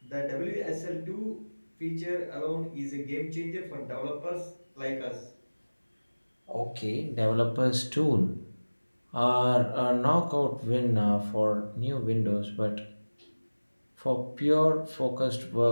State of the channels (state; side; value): inverted; both; correlation -1.00